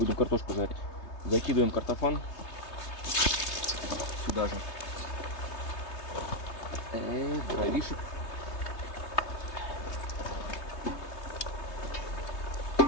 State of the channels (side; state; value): right; late; 3.2 ms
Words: картошку жарить. Закидываем картофан сюда же. Дровишек.